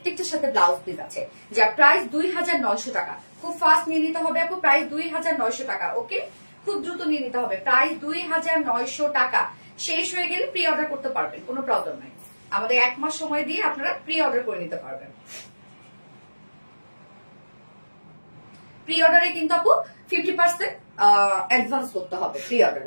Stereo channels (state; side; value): inverted; both; correlation -1.00